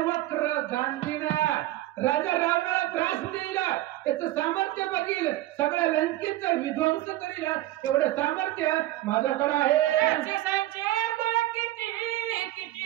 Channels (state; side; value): quieter; left; 15.7 dB